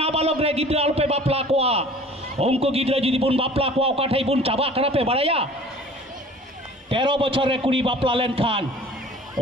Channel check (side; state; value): both; normal; correlation 0.47